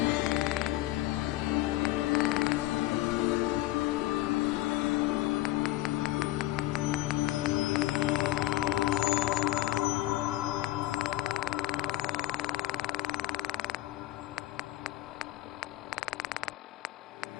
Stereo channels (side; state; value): right; quieter; 17.0 dB